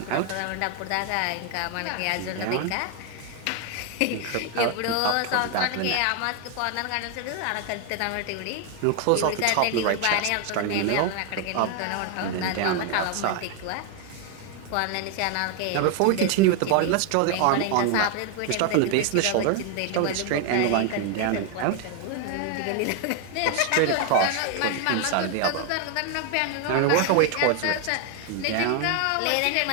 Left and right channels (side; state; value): both; different; correlation 0.01